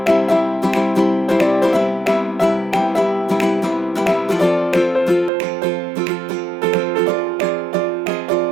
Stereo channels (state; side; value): drops out; left; at 5.3 s